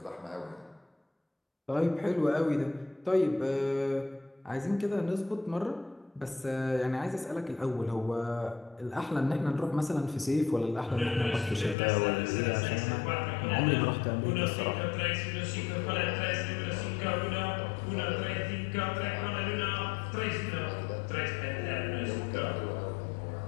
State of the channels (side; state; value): right; drops out; at 11.8 s